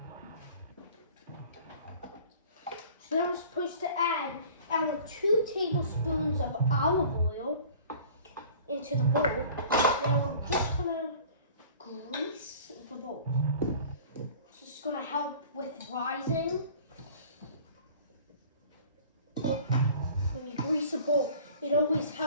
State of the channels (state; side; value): inverted; both; correlation -0.46